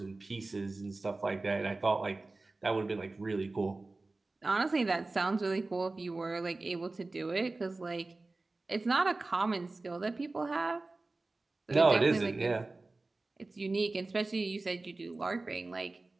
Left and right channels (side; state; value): left; quieter; 3.3 dB